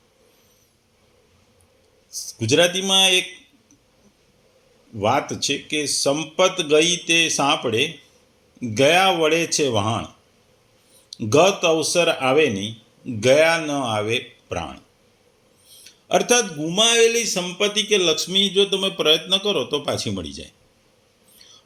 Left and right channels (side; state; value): both; identical; correlation 1.00